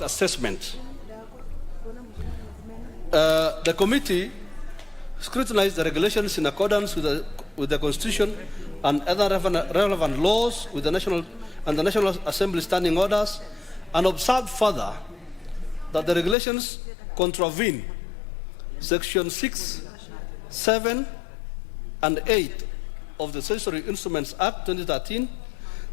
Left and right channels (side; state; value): right; drops out; at 16.4 s